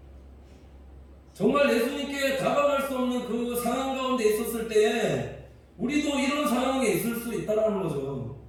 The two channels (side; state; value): both; identical; correlation 1.00